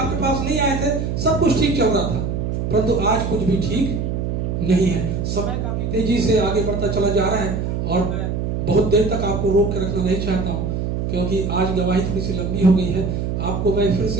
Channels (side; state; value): right; noise; hum, 2 dB below the sound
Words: पास नहीं आए थे, सब कुछ ठीक चल रहा था, परंतु आज कुछ भी ठीक नहीं है। समय काफी तेजी से आगे बढ़ता चला जा रहा है और मैं बहुत देर तक आपको रोक के रखना नहीं चाहता हूँ क्योंकि आज गवाही थोड़ी सी लंबी हो गई है। आपको मैं फिर